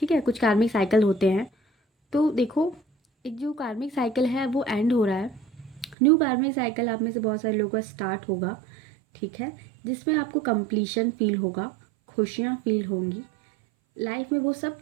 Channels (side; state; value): left; drops out; at 6.0 s